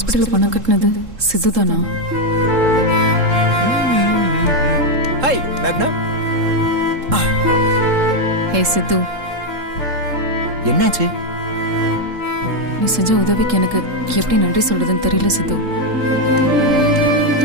பணம் கட்டினது சித்துதானா? ஹாய் மேக்னா. ஹே சித்து, என்னாச்சு? நீ செஞ்ச உதவிக்கு எனக்கு எப்படி நன்றி சொல்றதுன்னு தெரியல சித்து.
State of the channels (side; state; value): left; late; 3.7 ms